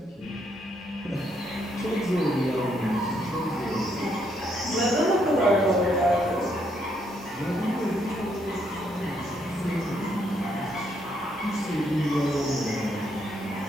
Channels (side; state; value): both; normal; correlation 0.73